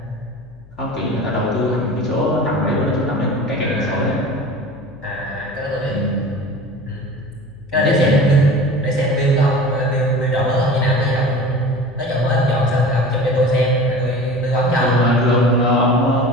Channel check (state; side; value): noise; left; hum, 23 dB below the sound